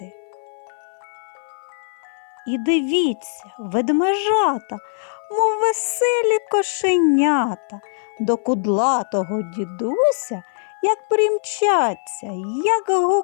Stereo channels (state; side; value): silent; right; 57 dB below the other